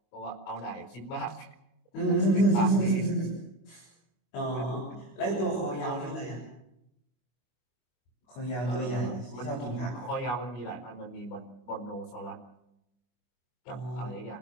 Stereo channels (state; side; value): late; right; 25 ms